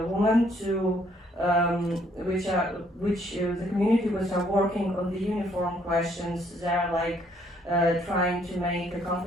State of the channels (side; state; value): both; normal; correlation 0.66